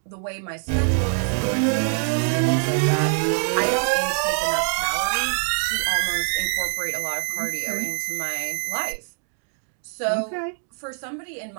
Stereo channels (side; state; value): left; silent; 62 dB below the other